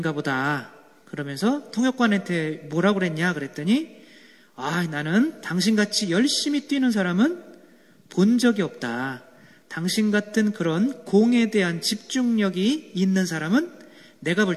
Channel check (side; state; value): both; identical; correlation 1.00